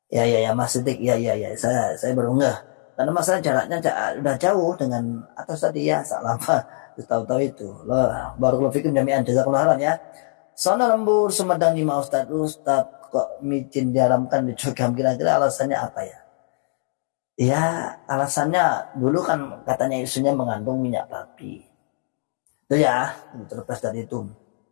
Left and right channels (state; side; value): silent; right; 64 dB below the other